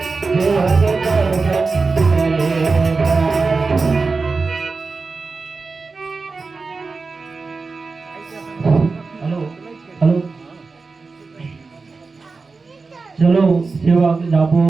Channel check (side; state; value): left; quieter; 4.2 dB